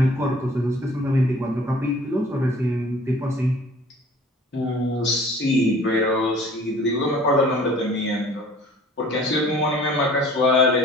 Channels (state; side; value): normal; both; correlation 0.50